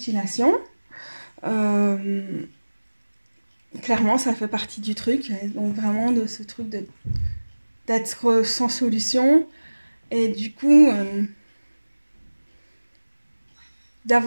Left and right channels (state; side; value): inverted; both; correlation -1.00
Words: clairement ça fait partie du truc, donc vraiment de ce truc d'être sans solution, et du coup